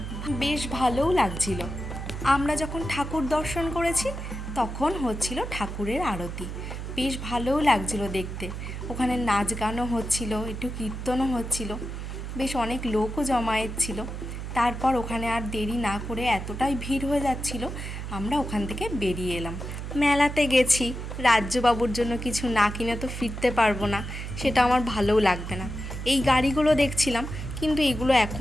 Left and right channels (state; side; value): noise; right; hum, 7 dB below the sound